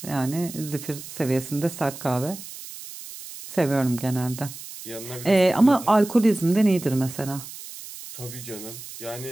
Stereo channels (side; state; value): right; noise; hiss, 13 dB below the sound